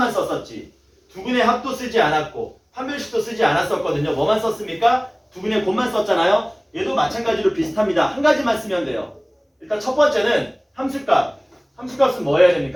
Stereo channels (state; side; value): identical; both; correlation 1.00